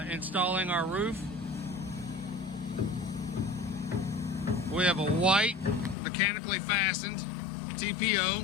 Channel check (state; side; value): drops out; right; at 6.0 s